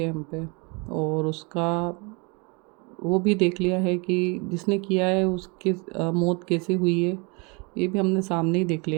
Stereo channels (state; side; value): quieter; left; 30.6 dB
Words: हम पे, और उसका वो भी देख लिया है कि जिसने किया है उसकी मौत कैसे हुई है, ये भी हमने सामने ही देख